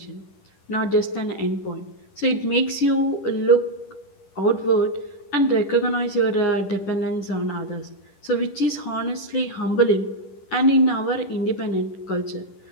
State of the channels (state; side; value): late; right; 10 ms